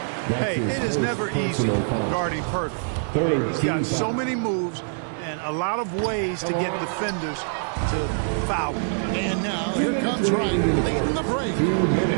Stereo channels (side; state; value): left; silent; digital silence